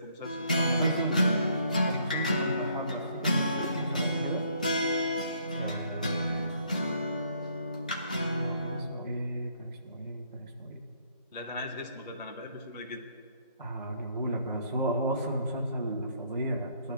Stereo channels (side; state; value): both; inverted; correlation -0.67